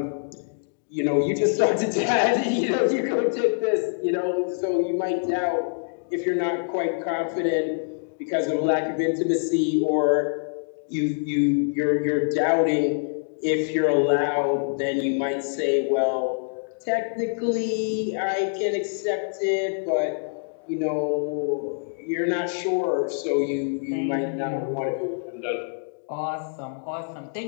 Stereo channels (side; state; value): right; silent; digital silence